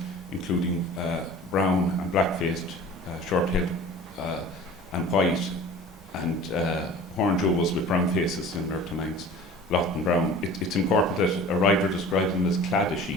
including brown and black-faced, short-tailed and white, and horn jewels with brown faces similar to Manx, Lot and Brown. It's important that a writer describes them as clad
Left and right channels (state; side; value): normal; both; correlation 0.42